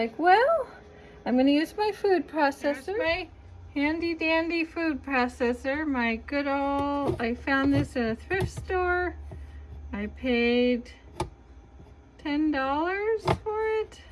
well, I'm going to use my food processor. There's my handy dandy food processor. My good old, I found this in a thrift store. I paid $10 for it.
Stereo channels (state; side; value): identical; both; correlation 1.00